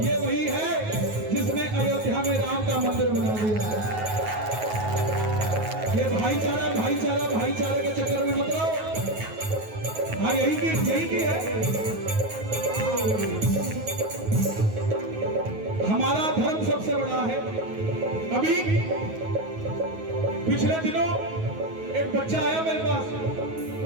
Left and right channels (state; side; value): late; left; 9.4 ms